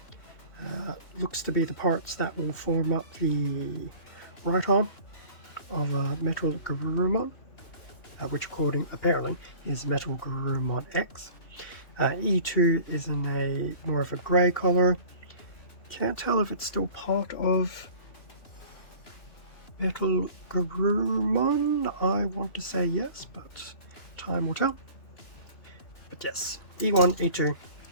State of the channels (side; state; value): right; late; 2.8 ms